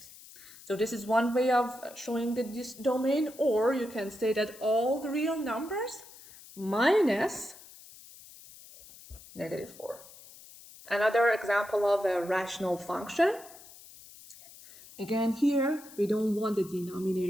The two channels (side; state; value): left; noise; hiss, 20 dB below the sound